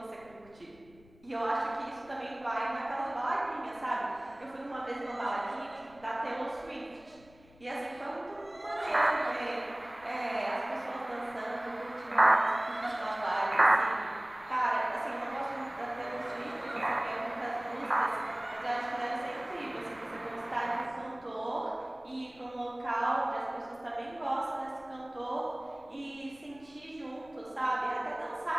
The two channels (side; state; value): left; noise; rumble, 26 dB below the sound